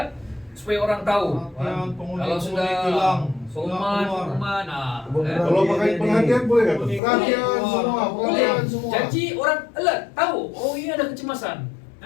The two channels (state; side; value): drops out; right; at 7.0 s